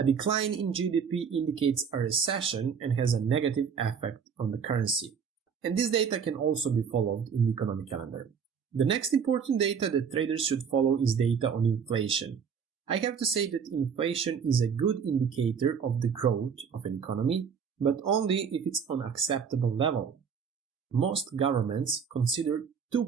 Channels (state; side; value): quieter; left; 6.7 dB